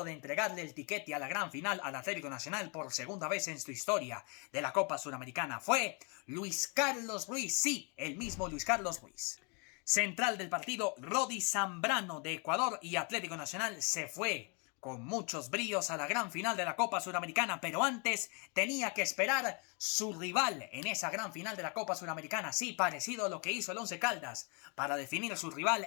de entregarle el tiquete a la gran final al Atlético Nacional por segunda vez en su historia de la Copa Suramericana fue Luis Carlos Ruiz, sí, el mismo Luis Carlos Ruiz. Central del partido, Rodi Zambrano de Ecuador, y Atlético Nacional se fue con muchos bríos a la gran final de la Copa Suramericana, pero antes tenía que esperar su rival en esa gran final de la Copa Suramericana, sí, parecido a lo que hizo el Once Caldas para definir su rival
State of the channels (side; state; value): right; quieter; 34.4 dB